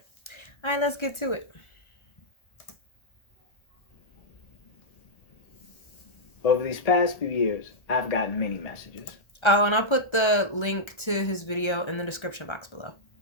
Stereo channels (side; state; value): right; late; 1.3 ms